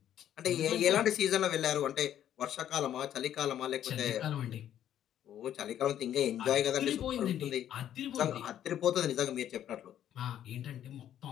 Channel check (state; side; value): quieter; right; 10.8 dB